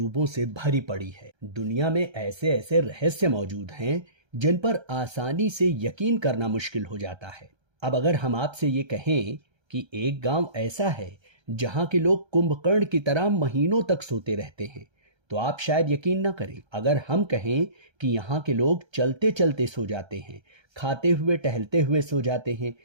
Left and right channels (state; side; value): late; left; 1.3 ms